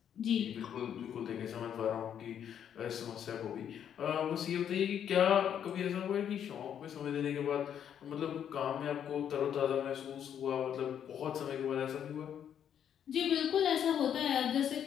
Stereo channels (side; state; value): right; quieter; 9.1 dB